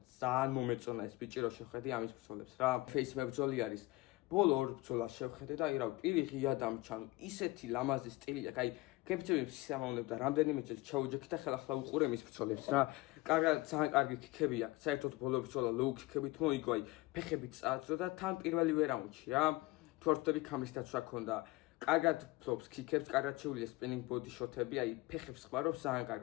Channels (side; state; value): right; quieter; 20.6 dB